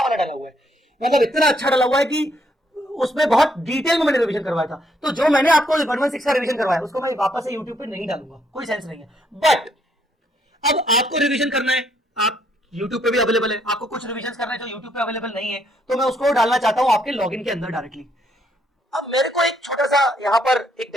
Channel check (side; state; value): both; normal; correlation 0.71